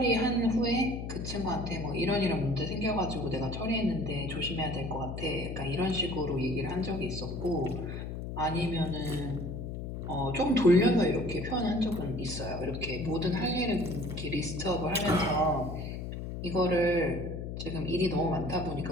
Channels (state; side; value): noise; left; hum, 6 dB below the sound